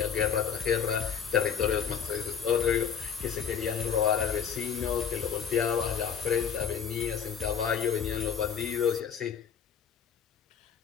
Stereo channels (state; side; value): quieter; right; 7.5 dB